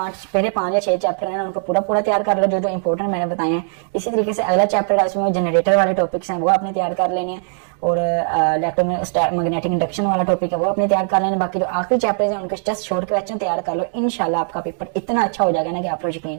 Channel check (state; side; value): silent; left; digital silence